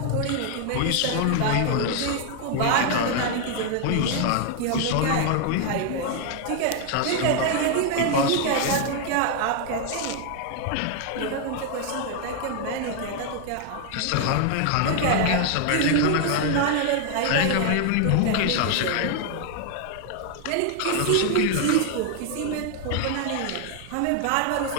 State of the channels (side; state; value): both; different; correlation 0.00